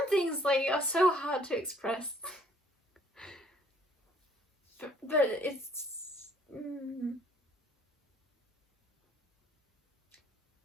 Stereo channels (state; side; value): normal; both; correlation 0.61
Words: things like are so hard to express. but it's